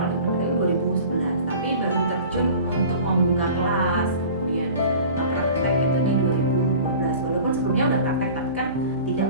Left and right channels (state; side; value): inverted; both; correlation -0.41